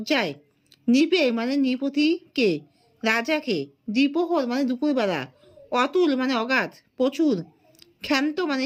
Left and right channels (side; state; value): both; identical; correlation 1.00